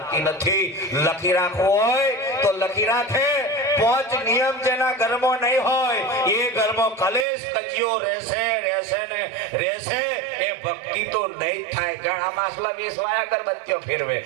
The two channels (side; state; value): left; drops out; at 7.2 s